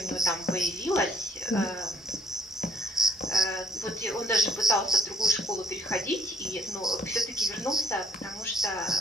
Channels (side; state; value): both; normal; correlation 0.65